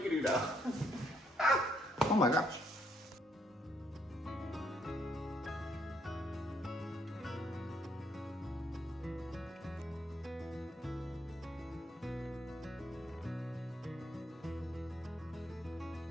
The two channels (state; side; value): normal; both; correlation 0.72